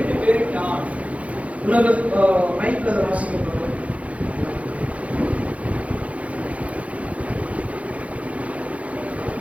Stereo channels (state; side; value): late; left; 0.065 ms